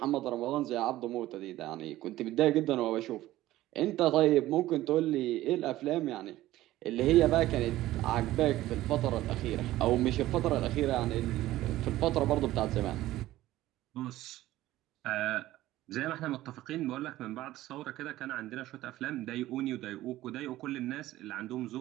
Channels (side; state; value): left; quieter; 15.6 dB